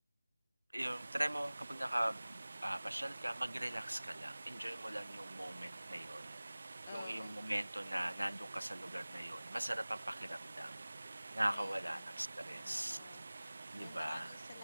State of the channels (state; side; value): inverted; both; correlation -0.99